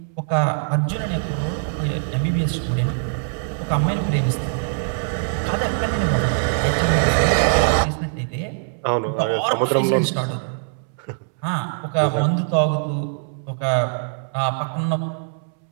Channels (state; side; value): silent; left; 64 dB below the other